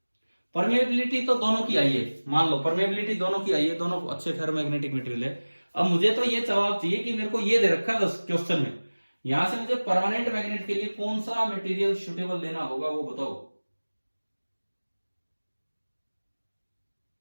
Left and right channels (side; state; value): both; inverted; correlation -1.00